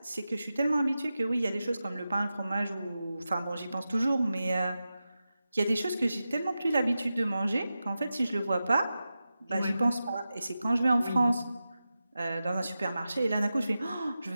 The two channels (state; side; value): inverted; both; correlation -0.92